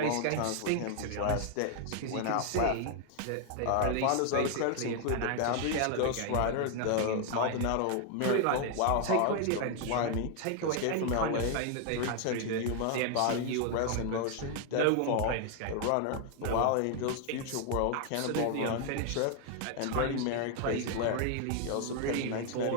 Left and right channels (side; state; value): both; different; correlation 0.00